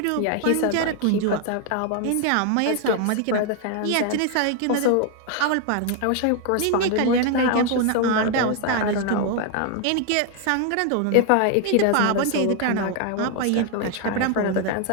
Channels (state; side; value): different; both; correlation 0.00